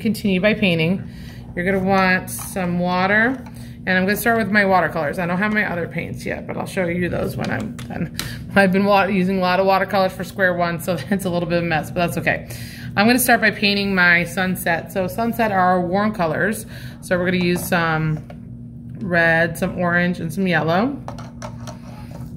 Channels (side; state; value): both; identical; correlation 1.00